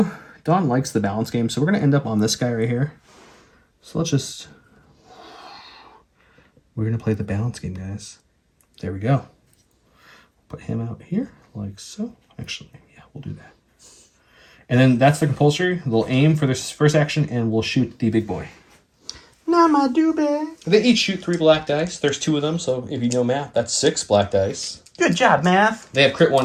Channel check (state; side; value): identical; both; correlation 1.00